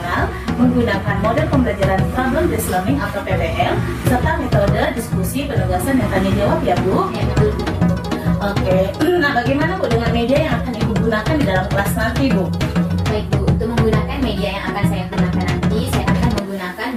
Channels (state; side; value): identical; both; correlation 1.00